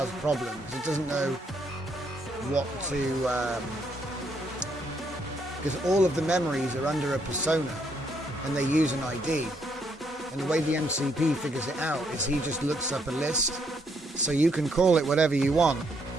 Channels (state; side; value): normal; both; correlation 0.73